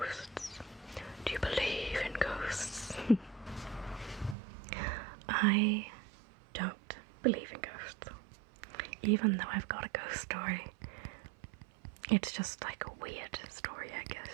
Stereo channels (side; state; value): left; drops out; at 4.4 s